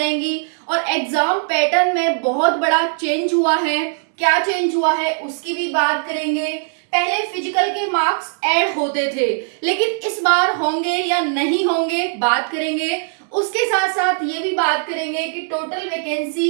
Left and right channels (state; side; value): silent; left; digital silence